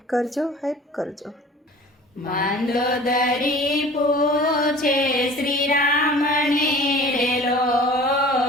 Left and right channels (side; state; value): both; normal; correlation 0.44